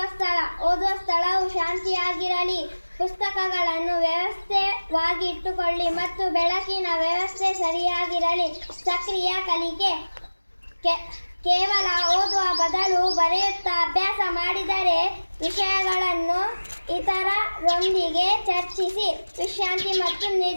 ಓದುವ ಸ್ಥಳವು ಶಾಂತಿಯಾಗಿರಲಿ. ಪುಸ್ತಕಗಳನ್ನು ವ್ಯವಸ್ಥಿತವಾಗಿ ಇಟ್ಟುಕೊಳ್ಳಿ ಮತ್ತು ಬೆಳಕಿನ ವ್ಯವಸ್ಥೆ ಸರಿಯಾಗಿರಲಿ. ಸಕ್ರಿಯ ಕಲಿಕೆ: ಕೇವಲ ಓದುವ ಬದಲು ಬರೆಯುತ್ತಾ ಅಭ್ಯಾಸ ಮಾಡಿದರೆ ವಿಷಯಗಳನ್ನು ಇತರರೊಂದಿಗೆ ಚರ್ಚಿಸಿ. ವಿಶ್ರಾಂತಿ ಮತ್ತು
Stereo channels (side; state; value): both; inverted; correlation -1.00